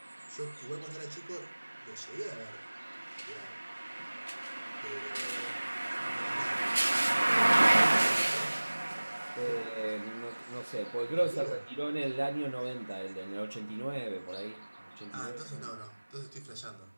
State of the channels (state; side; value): inverted; both; correlation -1.00